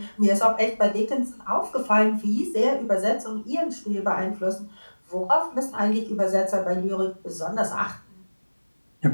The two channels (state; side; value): inverted; both; correlation -1.00